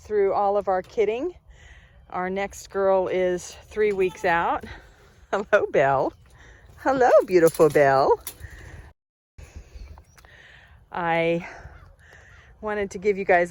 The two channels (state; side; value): identical; both; correlation 1.00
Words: all of our kidding. Our next girl is 3 weeks out. Hello, Belle. Hello, beautiful Belle. I wanted to give you guys